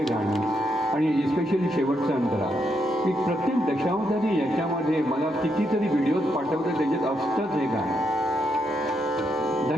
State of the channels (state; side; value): normal; both; correlation 0.80